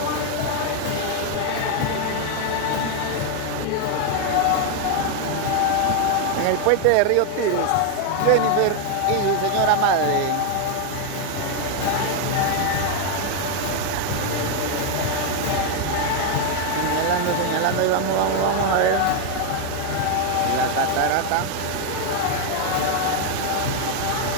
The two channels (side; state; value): both; different; correlation 0.01